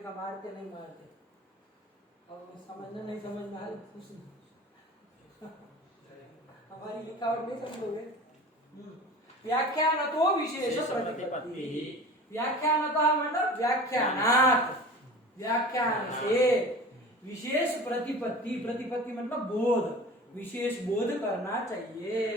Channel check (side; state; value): both; normal; correlation 0.38